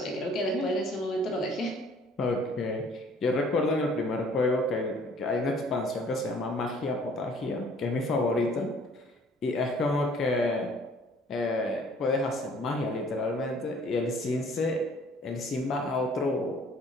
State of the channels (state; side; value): normal; both; correlation 0.56